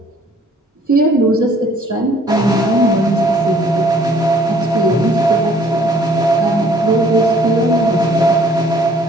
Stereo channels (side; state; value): both; normal; correlation 0.58